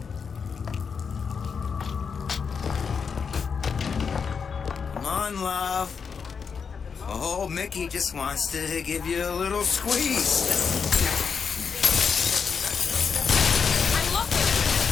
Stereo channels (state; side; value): quieter; right; 6.0 dB